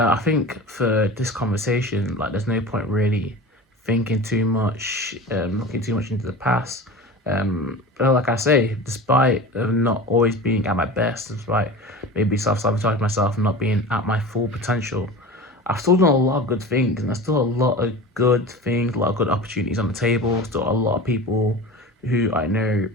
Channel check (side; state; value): both; normal; correlation 0.33